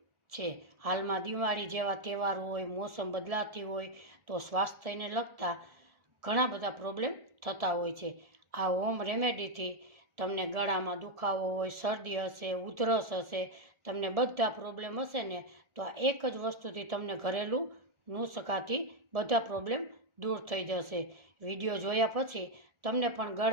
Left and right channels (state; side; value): late; left; 1.4 ms